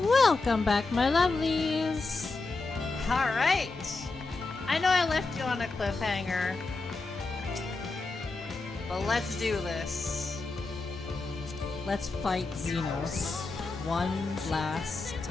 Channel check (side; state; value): right; quieter; 3.6 dB